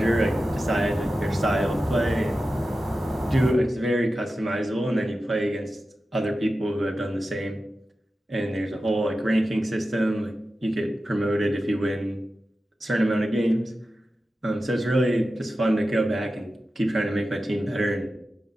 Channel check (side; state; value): both; normal; correlation 0.93